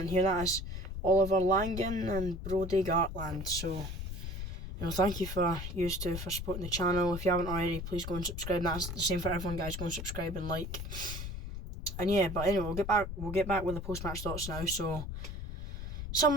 hear that, it's Oliver Langan and Brody Gartland. So, you know, thank you for supporting the channel. If you haven't already, please go and subscribe. That's the same for everyone, guys. Go and subscribe and like. And yeah, but anyway, we'll get back with the post-match thoughts now. So,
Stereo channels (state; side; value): noise; left; rumble, 7 dB below the sound